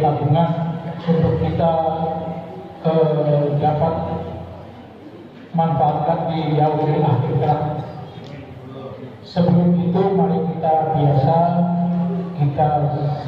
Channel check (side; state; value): both; identical; correlation 1.00